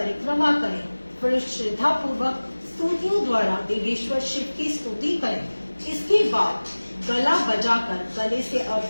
करें। फिर श्रद्धा पूर्वक स्तुतियों द्वारा देवेश्वर शिव की स्तुति करें। इसके बाद गला बजाकर गले से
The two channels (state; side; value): inverted; both; correlation -1.00